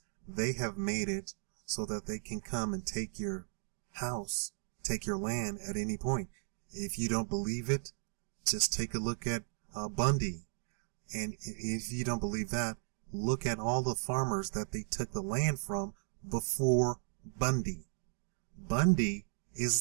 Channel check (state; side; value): silent; left; digital silence